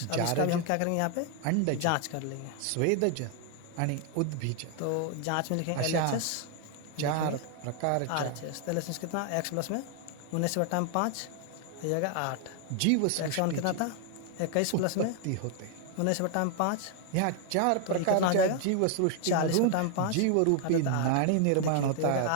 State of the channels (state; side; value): different; both; correlation 0.00